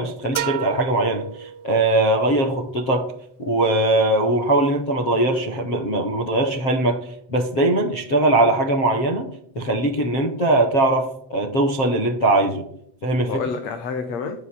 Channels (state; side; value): late; right; 7.8 ms